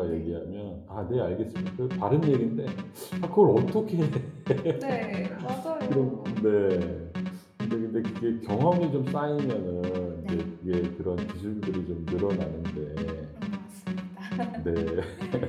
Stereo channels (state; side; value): identical; both; correlation 1.00